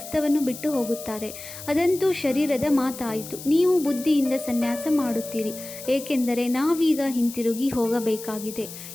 ಬಿಟ್ಟು ಹೋಗುತ್ತಾರೆ. ಅದಂತೂ ಶರೀರದ ಮಾತಾಯಿತು. ನೀವು ಬುದ್ಧಿಯಿಂದ ಸನ್ಯಾಸ ಮಾಡುತ್ತೀರಿ, ಏಕೆಂದರೆ ನಾವೀಗ ಹಿಂತಿರುಗಿ ಹೋಗಬೇಕಾಗಿದೆ,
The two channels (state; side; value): noise; left; hiss, 13 dB below the sound